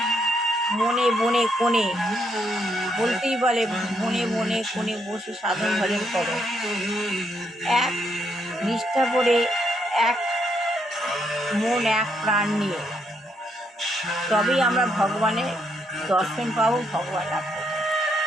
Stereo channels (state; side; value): normal; both; correlation 0.75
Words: বনে কোণে, বলতেই বলে বনে কোণে বসে সাধন ভজন করো, এক নিষ্ঠা করে, এক মন এক প্রাণ নিয়ে, তবেই আমরা ভগবানের দর্শন পাবো, ভগবান লাভ করবো,